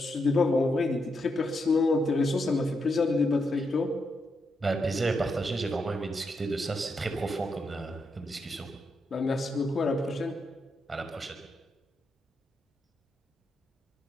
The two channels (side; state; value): both; normal; correlation 0.82